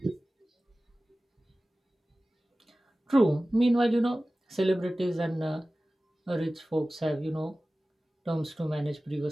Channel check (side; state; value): both; normal; correlation 0.97